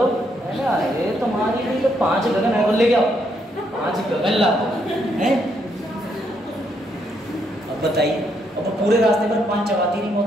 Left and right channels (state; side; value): normal; both; correlation 0.75